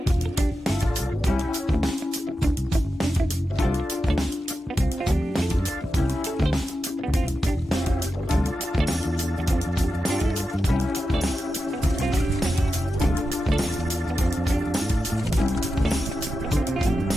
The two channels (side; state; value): both; normal; correlation 0.90